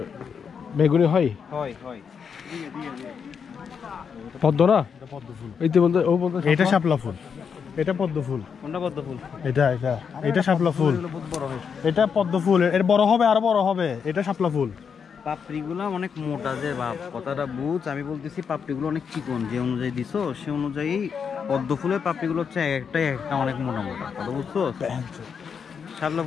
বেগুনি হয়? হয় হয়। পদ্ম না, পদ্ম ফুল। এই তো বলতে ও বলতে এটা শাপলা ফুল, এটা পদ্ম ফুল। কোনটা পদ্ম ফুল? এটা শাপলা ফুল। এটা পদ্ম ফুল, এর বড় হবে, আরো বড় হবে। এটা শাপলা ফুল। পাপড়িগুলো অনেক মোটা, যে বাপ কথাটা বুঝ। আমি বলতেছি পাপড়িগুলো অনেক চিকন, যে অনুযায়ী দিছো সে অনুযায়ী পদ্ম ফুলের পাপড়িগুলো হচ্ছে একটা অনেক মোটা মোটা, কথা বুঝছো? শাপলা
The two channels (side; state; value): right; quieter; 6.6 dB